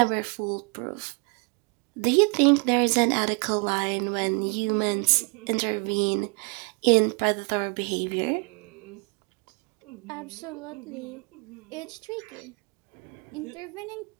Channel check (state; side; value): quieter; left; 34.4 dB